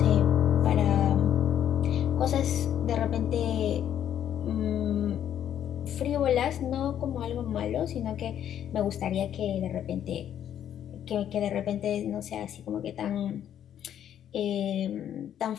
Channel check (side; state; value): right; quieter; 10.1 dB